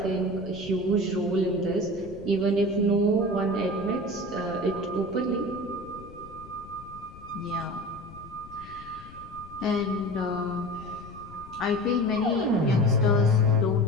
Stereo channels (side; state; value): left; noise; rumble, 18 dB below the sound